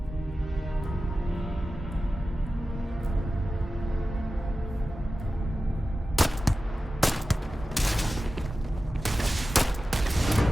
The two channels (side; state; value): both; normal; correlation 0.94